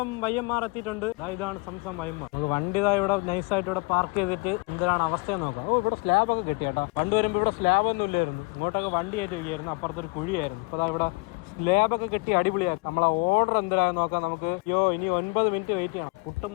YMR എത്തിയിട്ടുണ്ട്. ഇതാണ് സംസം YMR. നമുക്ക് വണ്ടി ഇവിടെ നൈസായിട്ട് ഇവിടെ പാർക്ക് ചെയ്തിട്ട് എന്തിനാണ് അവസ്ഥയെന്ന് നോക്കാം. ഇവിടെ സ്ലാബ് ഒക്കെ കിട്ടി കേട്ടോ. പണ്ട് വരുമ്പോൾ ഇവിടെ സ്ലാബ് ഒന്നും ഇല്ലായിരുന്നു. ഇങ്ങോട്ടൊക്കെ വണ്ടി ആയിട്ട് വയ്യായിരുന്നു. അപ്പുറത്തൊരു കുഴിയായിരുന്നു. അപ്പോൾ ഇവിടെ സ്ലാബൊക്കെ കിട്ടി അടിപൊളിയാക്കി. നമ്മളെ ഓർഡർ എന്തിനാന്ന് നോക്കാം നമുക്ക്. ഇനി 9 മിനിറ്റ് വെയിറ്റ് ചെയ്യണം. പുട്ടും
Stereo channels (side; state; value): right; quieter; 27.9 dB